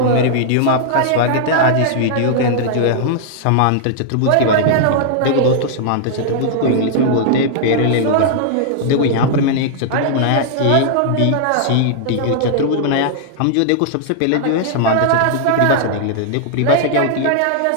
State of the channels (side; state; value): both; different; correlation -0.01